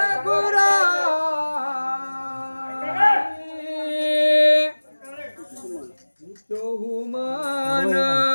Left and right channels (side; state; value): both; inverted; correlation -1.00